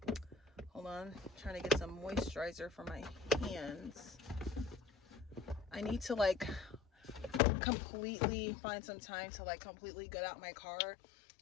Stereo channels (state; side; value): drops out; right; at 7.4 s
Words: Hold on. I'm trying to get some moisturizer for my hands. I need to completely find some time to completely get out my car